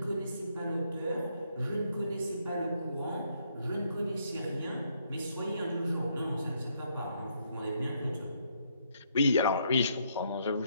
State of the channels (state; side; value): inverted; both; correlation -0.73